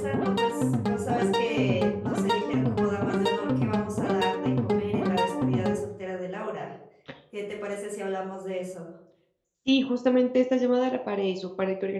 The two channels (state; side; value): identical; both; correlation 1.00